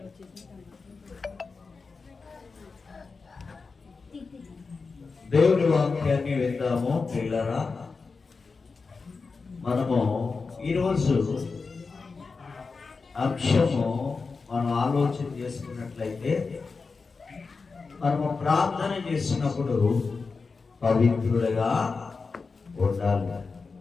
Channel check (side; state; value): right; quieter; 4.5 dB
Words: దేవుని వాక్యాన్ని విందాము పిల్లరా. మనము ఈరోజు అంశము మనం ఆలోచన చేసుకున్నట్లయితే, మనము ప్రార్థన చేసినప్పుడు పవిత్రులుగా ఉండాలి.